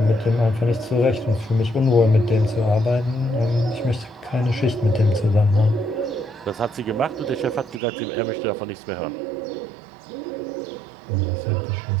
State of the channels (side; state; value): left; drops out; at 7.8 s